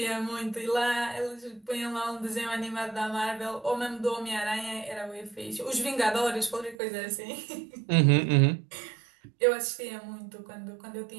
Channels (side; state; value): left; drops out; at 6.8 s